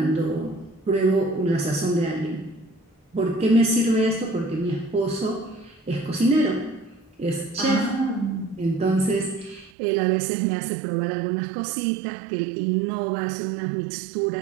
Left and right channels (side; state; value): left; drops out; at 9.7 s